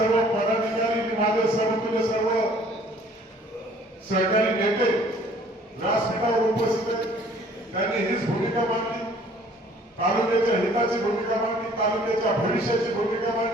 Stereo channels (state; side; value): normal; both; correlation 0.55